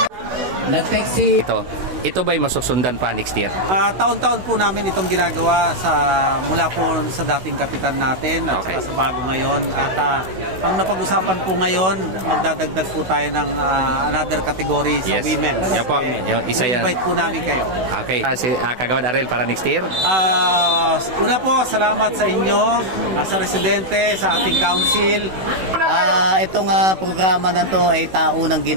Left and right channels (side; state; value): left; late; 16 ms